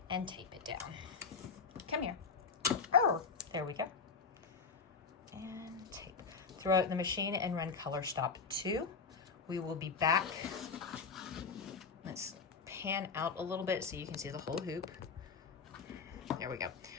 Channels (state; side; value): quieter; right; 5.3 dB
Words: and tape it down. Come here. Oh, there we go. And tape. Throw it in the machine and run color stop 2. We will be back. Let's pan out a little bit so you can see the whole hoop. There we go.